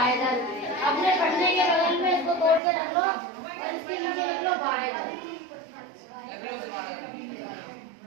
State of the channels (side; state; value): left; drops out; at 2.6 s